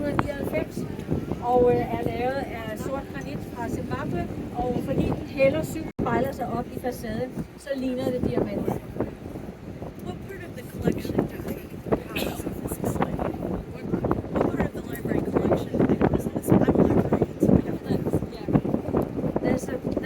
og er lavet af sort granit fra Zimbabwe, og fordi den hælder syv spejler sig op i facaden, så ligner det diamanter. What part of the collection do they house of this display? What part of the library collection? I know this. I'm a librarian, so I have things. Yeah.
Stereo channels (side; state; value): both; identical; correlation 1.00